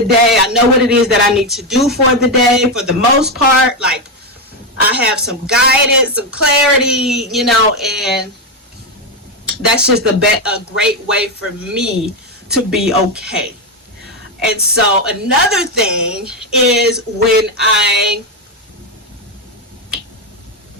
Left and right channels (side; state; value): both; normal; correlation 0.08